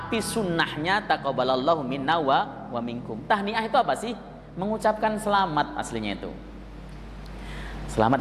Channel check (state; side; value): identical; both; correlation 1.00